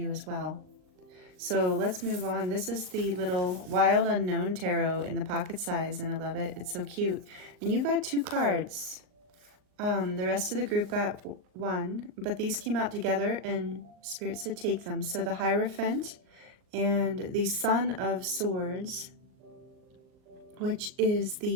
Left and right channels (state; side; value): late; left; 39 ms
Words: as well. So let's move on. This is the little Wild Unknown Tarot in the pocket size, and I love it. It's so cute. And you got 2 cards. The rest of the group got 1, but these came out together and Spirit said take them. So the Hierophant and the Son of Swords, which is